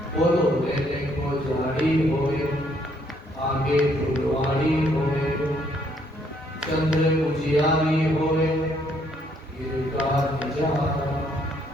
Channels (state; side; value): normal; both; correlation 0.69